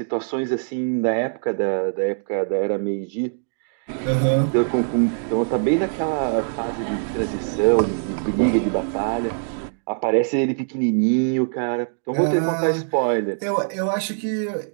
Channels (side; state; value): left; silent; digital silence